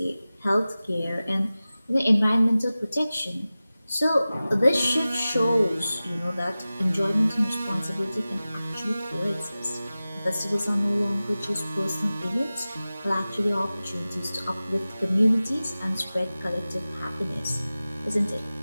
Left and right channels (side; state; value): both; inverted; correlation -0.96